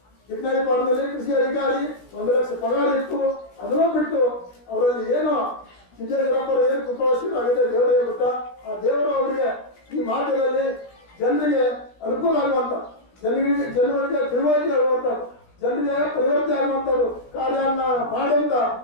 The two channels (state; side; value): late; right; 16 ms